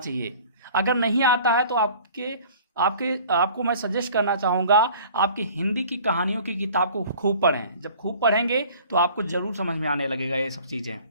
चाहिए। अगर नहीं आता है तो आपको मैं सजेस्ट करना चाहूँगा, आपकी हिंदी की कहानियों की किताब को खूब पढ़ें। जब खूब पढ़ेंगे तो आपको जरूर समझ में आने लगेगा ये सब चीज़ें।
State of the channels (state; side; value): inverted; both; correlation -0.48